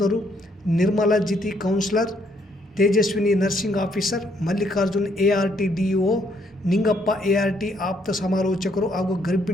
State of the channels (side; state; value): both; normal; correlation 0.70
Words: Nirmala Jithi counsellor, Tejaswini nursing officer, Mallikarjun ART DO, Ningappa ART ಆಪ್ತ ಸಮಾಲೋಚಕರು ಹಾಗೂ